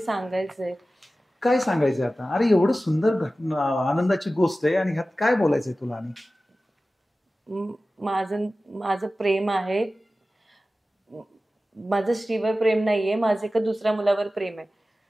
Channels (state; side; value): normal; both; correlation 0.95